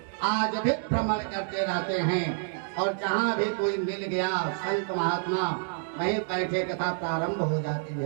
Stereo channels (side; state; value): left; silent; digital silence